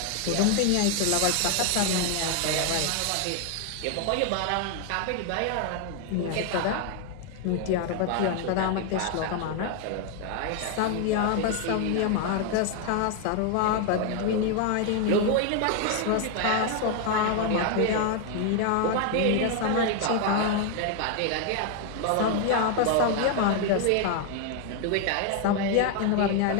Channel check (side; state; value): both; different; correlation 0.01